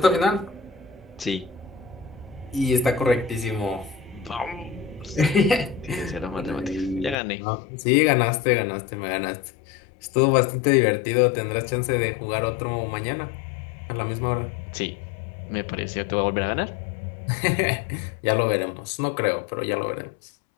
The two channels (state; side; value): drops out; right; at 7.2 s